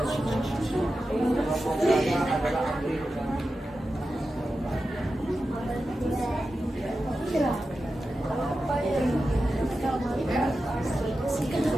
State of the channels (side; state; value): both; normal; correlation 0.92